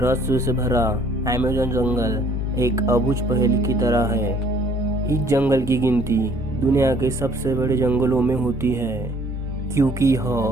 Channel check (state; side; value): normal; both; correlation 0.58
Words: से भरा अमेज़न जंगल एक अबूझ पहेली की तरह है। इस जंगल की गिनती दुनिया के सबसे बड़े जंगलों में होती है, क्योंकि यह